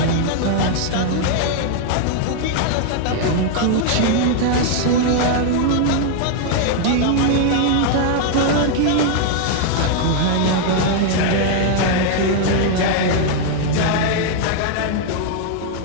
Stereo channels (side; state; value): both; different; correlation 0.00